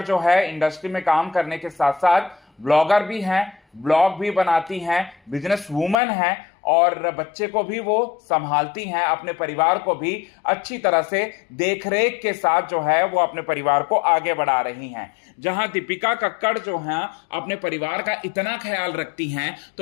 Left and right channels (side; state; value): right; drops out; at 6.0 s